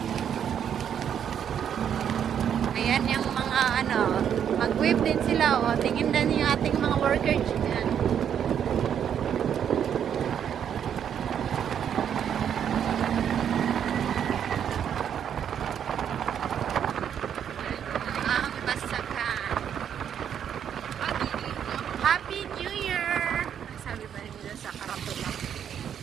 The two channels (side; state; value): left; quieter; 8.8 dB